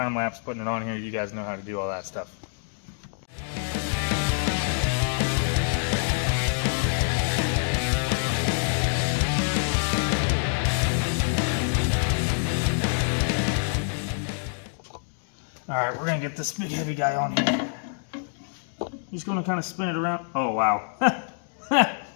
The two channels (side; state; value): right; silent; digital silence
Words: lapse putting it on here. You guys know how to do all that stuff. Alright, we're going to get this big heavy guy on here. Just going to kind of spin it around. Oh, wow.